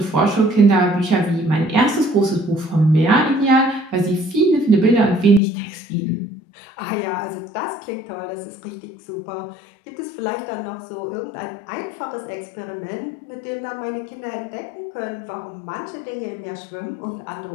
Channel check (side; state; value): right; drops out; at 5.4 s